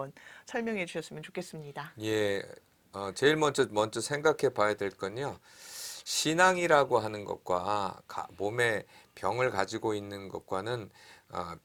설명해 주셨으면 좋겠습니다. 예, 제일 먼저 생각해 봐야 될 건요. 신앙이라고 하는 것과 몸에 병을 가지고 있는 것과는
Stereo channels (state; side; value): identical; both; correlation 1.00